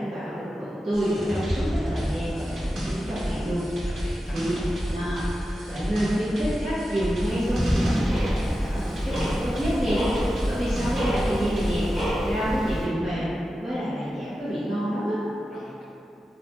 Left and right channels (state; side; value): normal; both; correlation 0.92